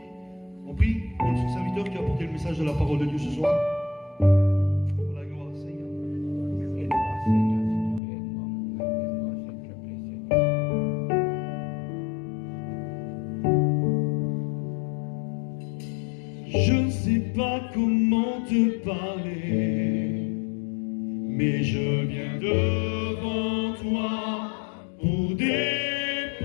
on prie pour notre serviteur qui a apporté le message de la parole de Dieu ce soir. Pour la gloire, Seigneur. Aide-moi, Seigneur, aide-moi, s'il te plaît, Seigneur. Je ne sais pas comment te parler, mais je viens devant toi pour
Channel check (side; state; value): right; drops out; at 8.0 s